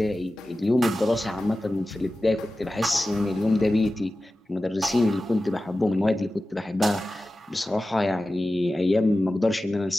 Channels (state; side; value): normal; both; correlation 0.95